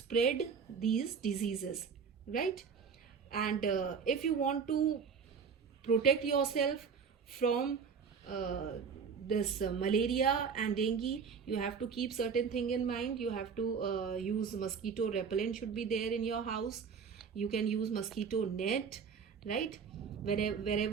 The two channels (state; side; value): quieter; left; 6.1 dB